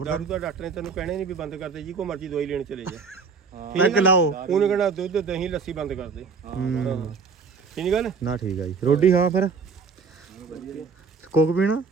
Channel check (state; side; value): quieter; left; 5.2 dB